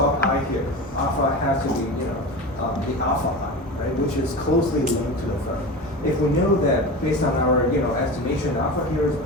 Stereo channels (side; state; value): both; normal; correlation 0.28